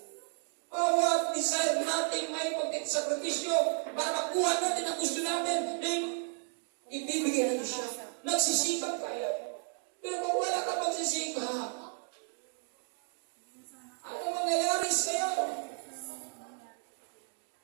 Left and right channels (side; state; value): left; silent; 56 dB below the other